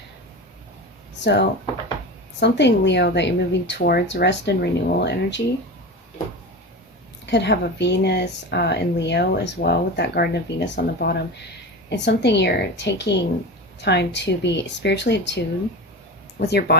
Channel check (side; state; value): both; normal; correlation 0.27